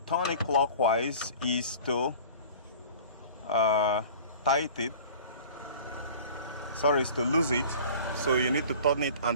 it clockwise is to tighten it. Sorry, is to lose it. So you need to turn it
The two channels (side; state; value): both; inverted; correlation -0.43